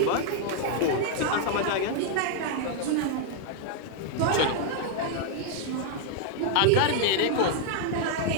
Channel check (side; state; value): both; different; correlation 0.00